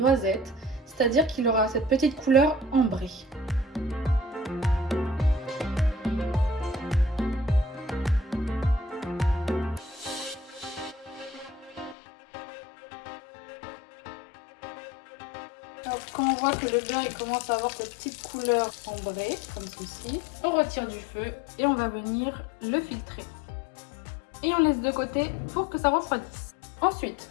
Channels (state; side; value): drops out; right; at 12.0 s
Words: c'est-à-dire qu'il aura cette petite couleur ambrée. Alors, quand on voit que le beurre il commence à avoir cette petite couleur ambrée, comme ceci, on retire du feu et on va venir le filtrer. Et on laisse de côté pour que ça refroidisse. Ensuite,